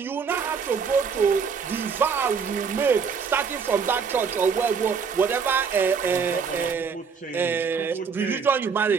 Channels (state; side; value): quieter; left; 5.9 dB